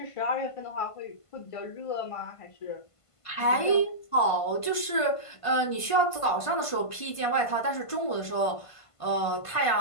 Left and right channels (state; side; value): late; right; 1.5 ms